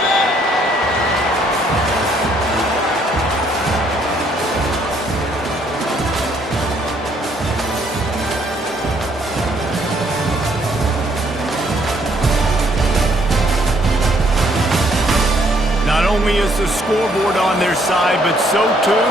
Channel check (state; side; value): normal; both; correlation 0.67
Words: Not only is the scoreboard on their side, but so too